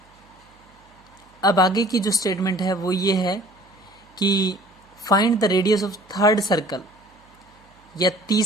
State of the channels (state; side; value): noise; right; hum, 30 dB below the sound